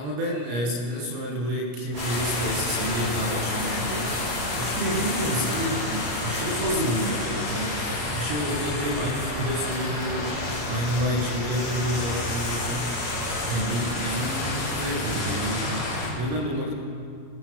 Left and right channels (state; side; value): late; left; 34 ms